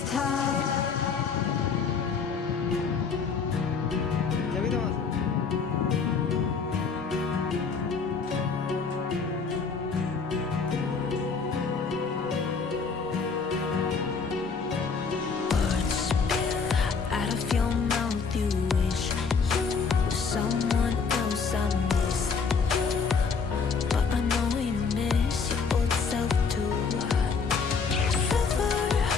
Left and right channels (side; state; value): right; quieter; 5.3 dB